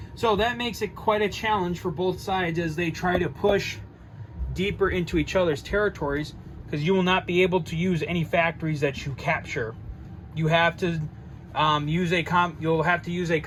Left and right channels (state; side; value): identical; both; correlation 1.00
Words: So that makes it quite a challenge for both sides as they try to push deeper into each other's territories, because you will not be able to use any factories that you capture. You have to you'll have to use a